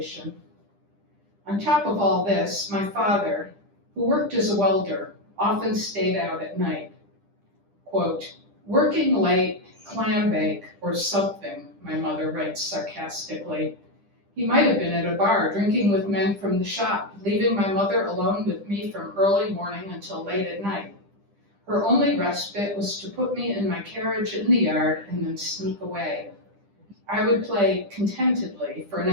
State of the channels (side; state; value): left; late; 10 ms